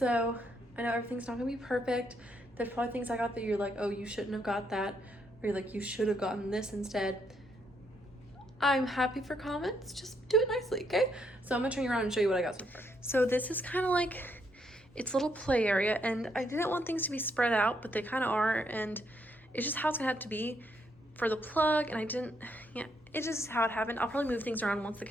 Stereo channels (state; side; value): normal; both; correlation 0.75